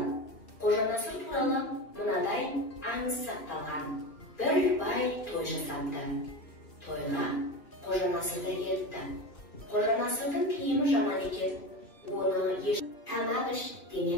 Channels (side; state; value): right; late; 2.8 ms